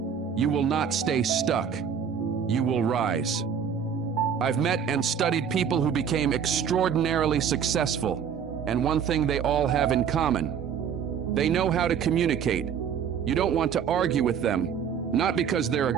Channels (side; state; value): left; quieter; 7.6 dB